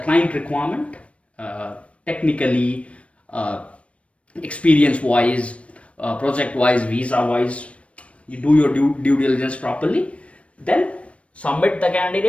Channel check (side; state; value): right; late; 0.062 ms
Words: client requirement, technically, experience wise, project wise, visa wise. You do your due diligence properly. Then submit the